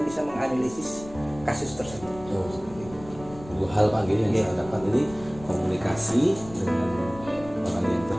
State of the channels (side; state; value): left; noise; rumble, 17 dB below the sound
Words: bisa menganalisis kasus tersebut. Dua hal Pak yang saya dapat ini, komunikasi dengan orang yang